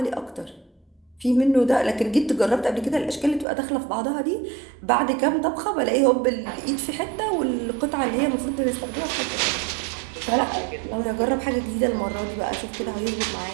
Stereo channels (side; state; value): left; drops out; at 3.5 s